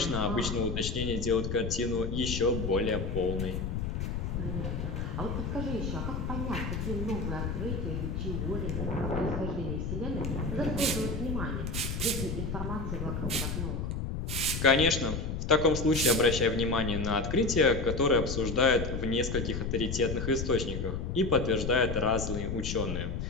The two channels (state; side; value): noise; left; rumble, 3 dB below the sound